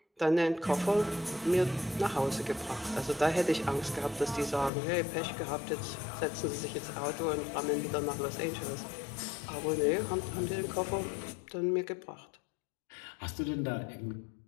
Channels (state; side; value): drops out; right; at 4.7 s